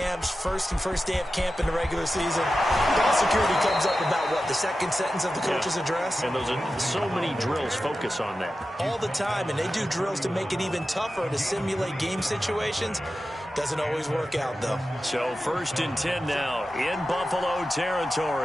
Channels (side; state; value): both; normal; correlation 0.93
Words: first day of camp in the regular season, ball security comes up about what, the second sentence of the coach's address? And those are so many drills focus on that. All the time, and they do drills to make it even tougher to simulate game situations. Doesn't always work out, though. So 1st and 10 now in Buffalo